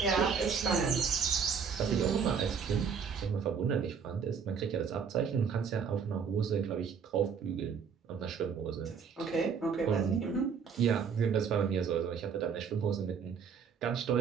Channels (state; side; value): quieter; left; 6.5 dB